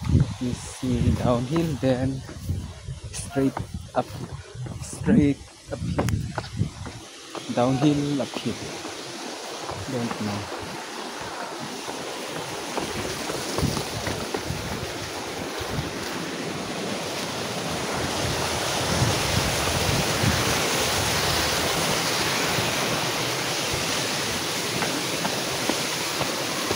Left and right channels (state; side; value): identical; both; correlation 1.00